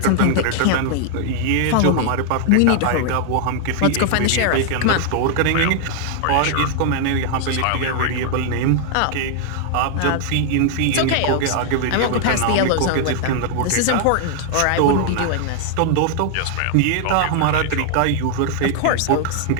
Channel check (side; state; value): both; different; correlation 0.00